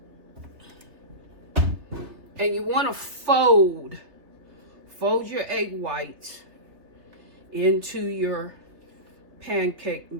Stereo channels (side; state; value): left; late; 3.3 ms